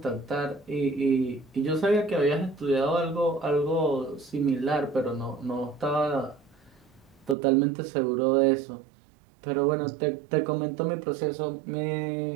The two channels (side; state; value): left; drops out; at 7.4 s